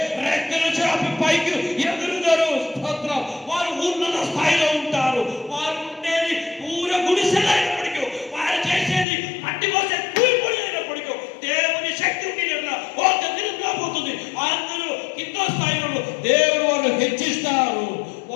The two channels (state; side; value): drops out; right; at 9.1 s